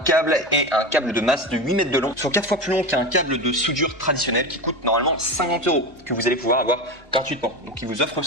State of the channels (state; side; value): normal; both; correlation 0.23